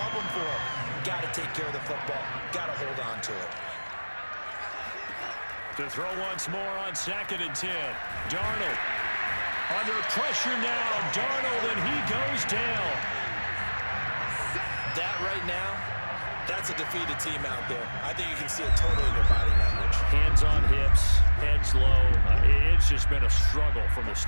for them. Got to take care of the football. Got to hold on to it. To throw once more on 2nd and 10. Darnold under pressure now. Darnold, and he goes down. That right now, that's a defeated team out there. I think you can see it totally in their body language. Hands on hips, heads low. It's just been a struggle from the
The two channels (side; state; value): both; inverted; correlation -1.00